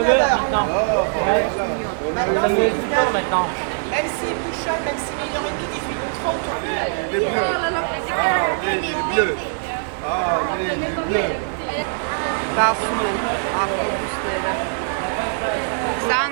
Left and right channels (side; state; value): left; silent; 64 dB below the other